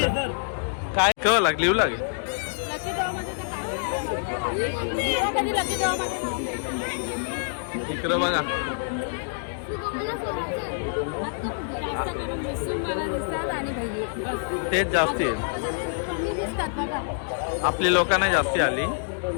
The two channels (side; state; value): right; silent; digital silence